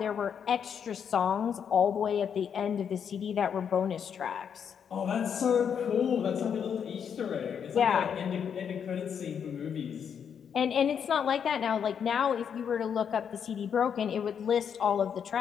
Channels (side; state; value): right; quieter; 7.6 dB